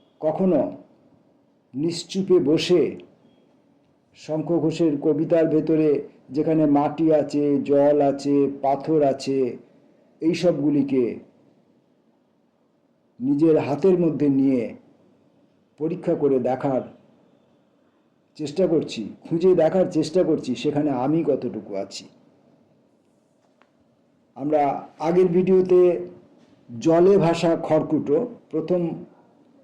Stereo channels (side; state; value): both; identical; correlation 1.00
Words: কখনো নিশ্চুপে বসে শঙ্খ ঘোষের কবিতার ভেতরে যেখানে মাটি আছে, জল আছে, পাথর আছে, এই সবগুলিকে নিজের হাতের মধ্যে নিয়ে পরীক্ষা করে দেখার চেষ্টা করছি, খুঁজে দেখার চেষ্টা করছি সেখানে আমি কতটুকু আছি। আমরা আগের ভিডিওতে জলে ভাসা খড়কুটো প্রথম